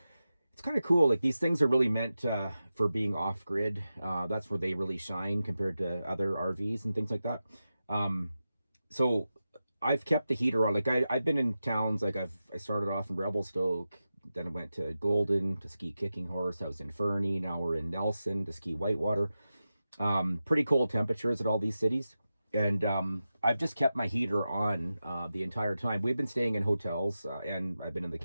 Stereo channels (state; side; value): inverted; both; correlation -0.92